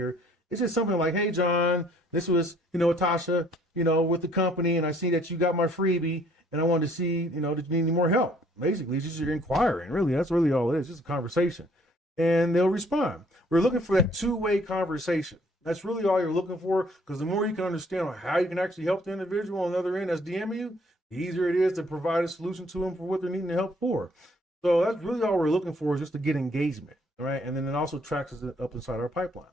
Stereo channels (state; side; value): normal; both; correlation 0.61